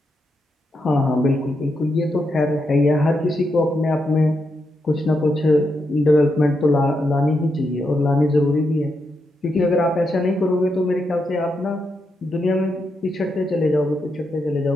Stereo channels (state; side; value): normal; both; correlation 0.83